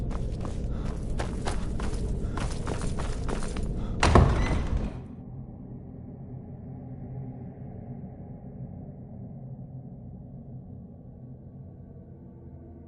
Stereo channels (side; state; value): both; identical; correlation 1.00